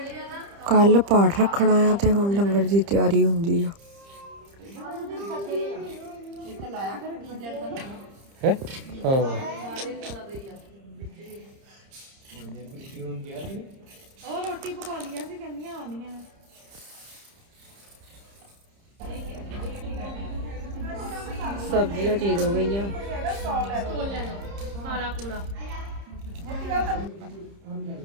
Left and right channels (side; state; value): left; late; 30 ms